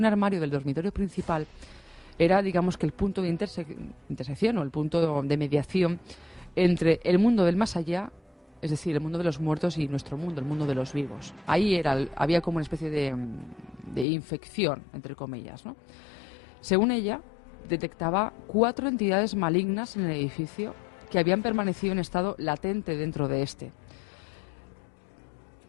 armario del dormitorio principal era, digamos, que el punto de intersección o el punto de mediación entre el mundo del más allá, es decir, el mundo de los muertos, y nuestro mundo, el mundo de los vivos. Ahí había como una especie de infección, entre comillas, ¿no? Según ella, detectaba 4 entidades malignas en el edificio que habían permanecido en estado latente dentro de este.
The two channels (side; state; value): right; drops out; at 14.1 s